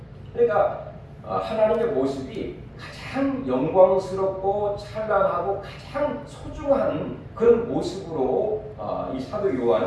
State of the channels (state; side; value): identical; both; correlation 1.00